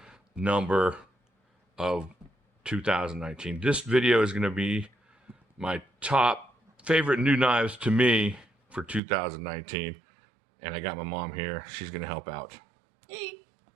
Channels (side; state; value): left; drops out; at 9.0 s